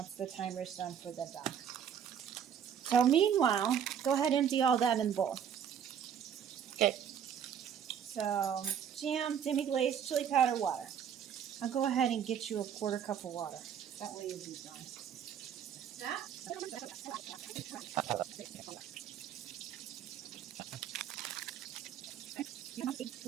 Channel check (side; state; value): left; quieter; 8.6 dB